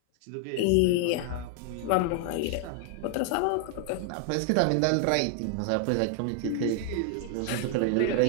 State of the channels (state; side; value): different; both; correlation 0.00